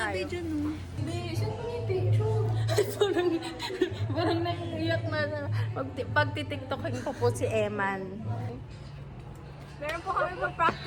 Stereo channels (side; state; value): both; identical; correlation 1.00